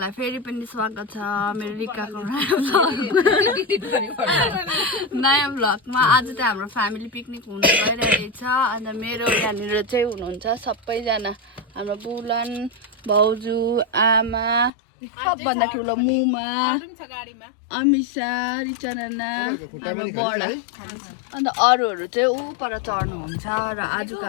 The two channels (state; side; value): drops out; right; at 14.7 s